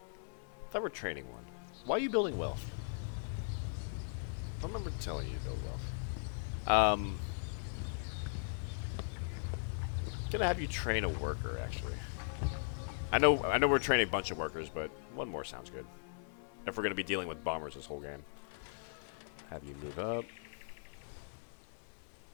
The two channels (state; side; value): silent; right; 52 dB below the other